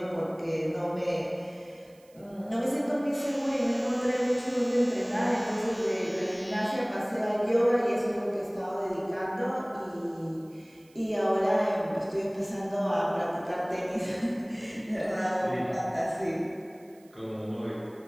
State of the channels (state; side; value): noise; right; hiss, 30 dB below the sound